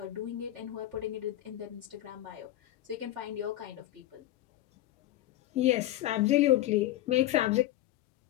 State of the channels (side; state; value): right; quieter; 14.5 dB